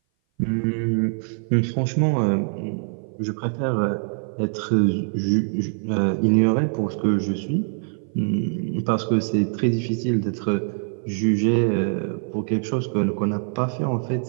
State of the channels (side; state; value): left; silent; 58 dB below the other